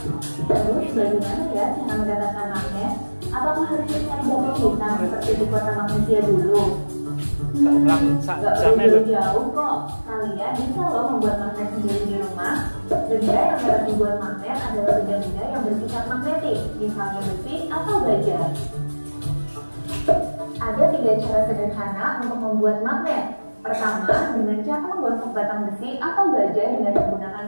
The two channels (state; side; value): inverted; both; correlation -1.00